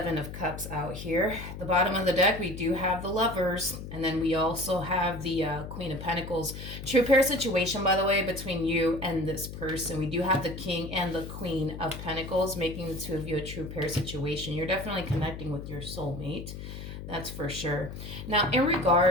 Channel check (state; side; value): noise; left; hum, 10 dB below the sound